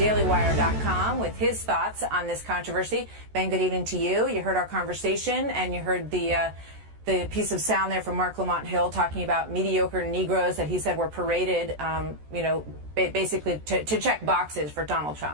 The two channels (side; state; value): left; late; 14 ms